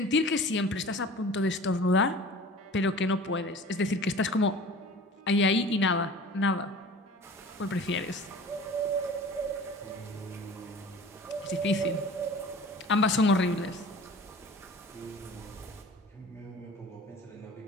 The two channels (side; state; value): both; normal; correlation 0.42